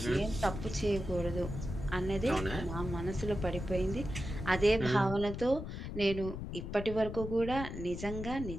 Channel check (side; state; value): left; noise; rumble, 7 dB below the sound